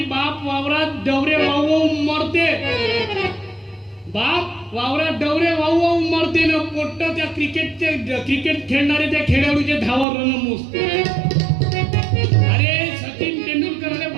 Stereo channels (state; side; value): drops out; left; at 10.1 s